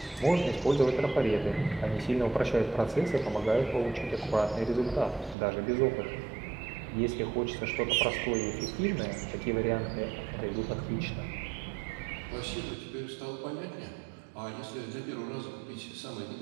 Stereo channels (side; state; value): left; drops out; at 5.4 s